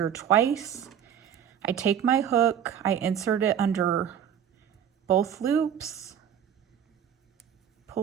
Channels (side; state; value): left; quieter; 9.0 dB